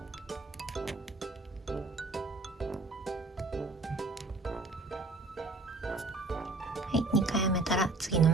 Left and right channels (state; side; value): quieter; left; 3.3 dB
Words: はい、2回編めたら次の